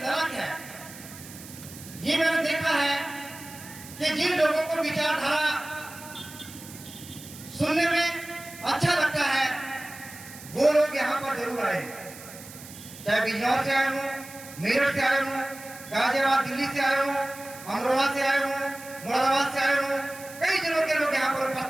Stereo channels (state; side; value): noise; right; hiss, 16 dB below the sound